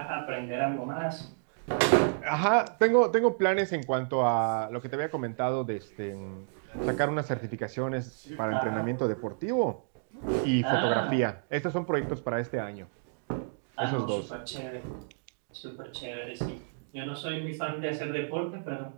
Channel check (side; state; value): left; silent; digital silence